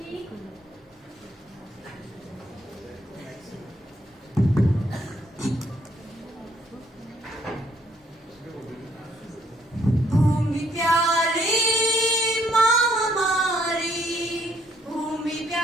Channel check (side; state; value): both; normal; correlation 0.68